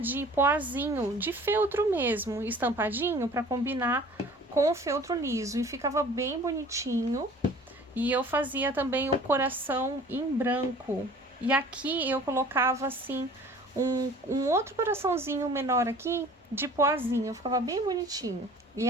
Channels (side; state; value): both; normal; correlation 0.47